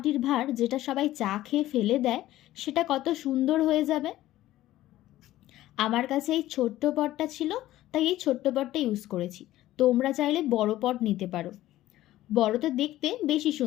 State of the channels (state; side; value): quieter; right; 15.0 dB